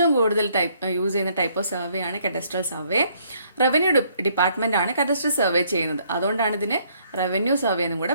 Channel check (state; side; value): inverted; both; correlation -0.66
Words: കൂടുതൽ use ചെയ്യുന്ന type of survey ആണ് cadastral survey. Revenue department ആണ് cadastral survey ചെയ്യുന്നത്, അതുകൊണ്ടാണ് ഇതിന് റവന്യൂ സർവേ എന്നും